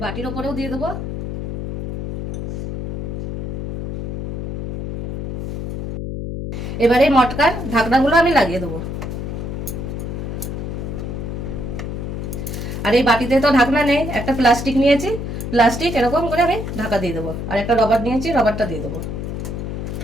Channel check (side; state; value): left; noise; hum, 5 dB below the sound